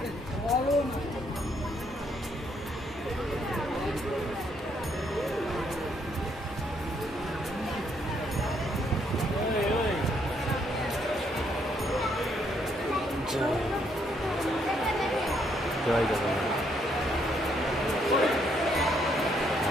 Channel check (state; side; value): normal; both; correlation 0.72